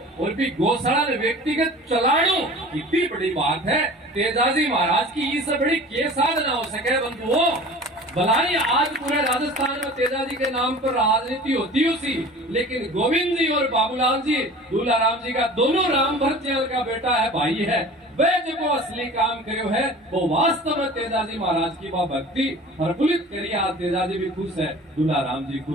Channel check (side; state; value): both; normal; correlation 0.41